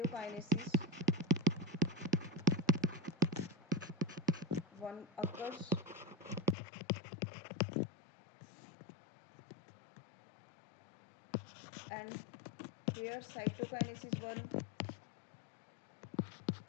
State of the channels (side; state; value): right; drops out; at 6.6 s